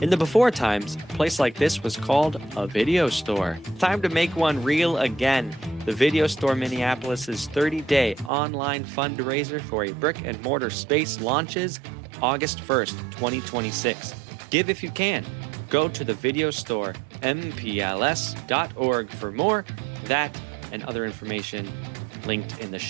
In the before times, a place like this was called a video store. Time to make one real again. The Video Store Minneapolis' 30-day online fundraiser for a brick-and-mortar space launches August 1st, 2026. Give if you can. Go to the video store, mpls.org for more. That and other information linked in the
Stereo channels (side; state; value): left; drops out; at 8.3 s